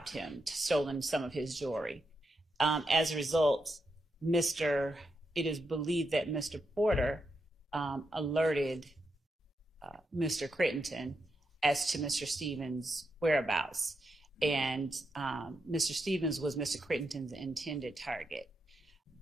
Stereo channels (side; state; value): both; normal; correlation 0.84